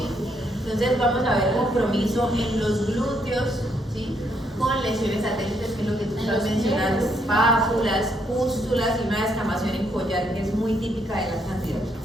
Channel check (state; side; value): normal; both; correlation 0.73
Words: Entonces vamos a ver compromiso en los glúteos, ¿sí? Con lesiones satélites, que es lo que tú estás mencionando, pápulas, pústulas y una descamación en collar, que es muy típica de la cándida.